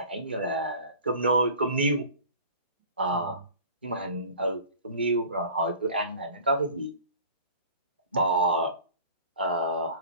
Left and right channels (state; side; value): inverted; both; correlation -0.43